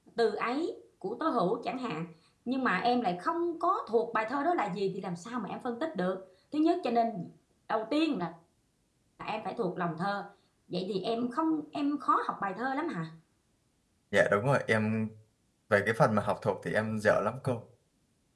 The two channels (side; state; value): both; identical; correlation 1.00